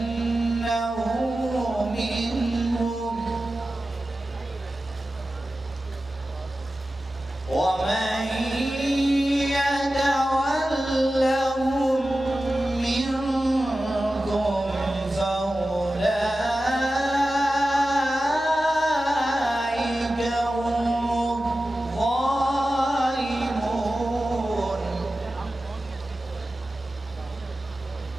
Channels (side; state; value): both; normal; correlation 0.94